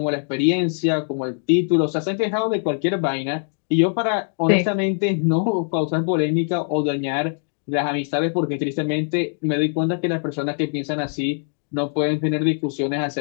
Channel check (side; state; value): right; silent; 57 dB below the other